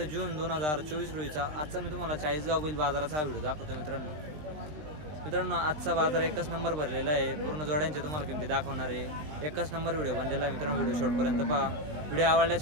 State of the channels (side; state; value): left; late; 20 ms